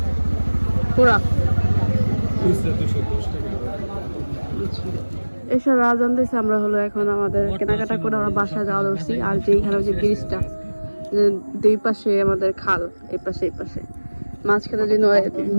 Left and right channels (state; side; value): inverted; both; correlation -1.00